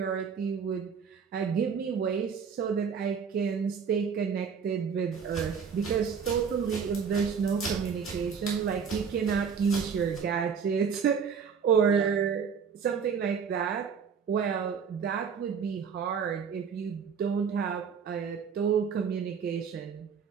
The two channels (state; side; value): quieter; left; 6.5 dB